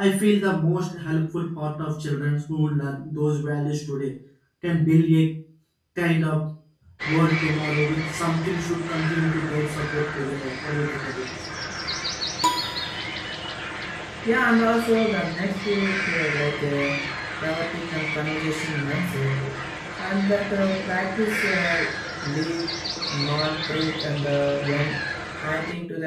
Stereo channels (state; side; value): identical; both; correlation 1.00